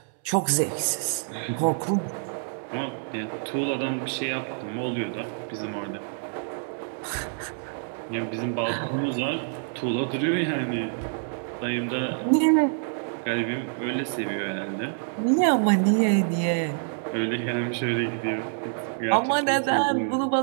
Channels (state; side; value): silent; left; 60 dB below the other